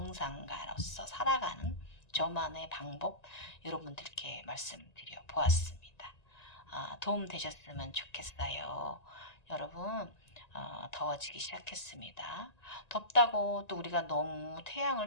살아가는 저만의 방법 여러분들께 말씀드려 보았습니다. 도움 되셨으면 좋겠어요. 여러분 더워지기 시작했습니다. 덥다고 또 우리가 너무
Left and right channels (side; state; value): right; late; 1.9 ms